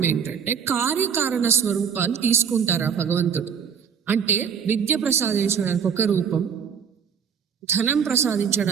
ఏంటంటే, కార్యకారణ స్వరూపాలు తీసుకుంటారు ఆ భగవంతుడు. అంటే విద్య ప్రసాదించడానికి ఒక రూపం, ధనం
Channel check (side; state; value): left; quieter; 7.1 dB